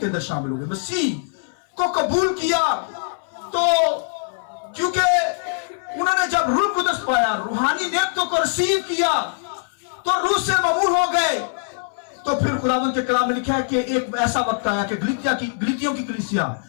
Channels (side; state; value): right; silent; 60 dB below the other